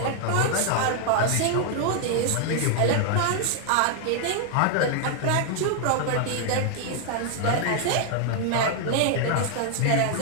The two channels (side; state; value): both; different; correlation 0.00